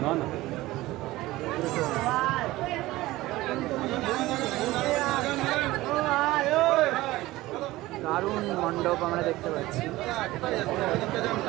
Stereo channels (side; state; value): left; quieter; 18.0 dB